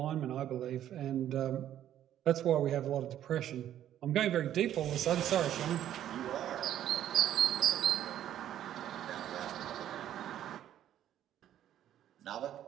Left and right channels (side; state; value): left; quieter; 11.3 dB